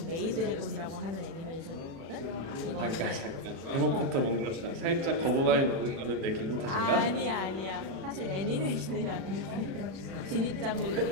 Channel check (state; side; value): late; left; 36 ms